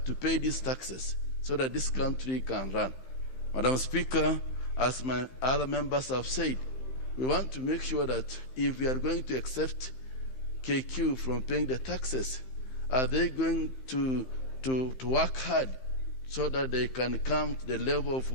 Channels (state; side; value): late; right; 15 ms